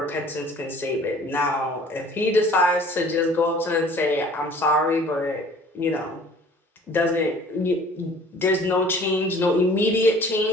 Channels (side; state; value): both; normal; correlation 0.50